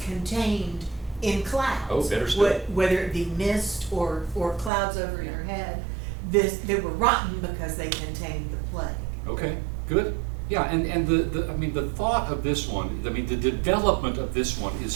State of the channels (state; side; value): drops out; left; at 4.7 s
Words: contained in clouds. Oh, better still. Whether it be mist or clouds over your head, they were rotten because they contained the plague. Okay, good. Yeah, and the thought of this one, the development of this one is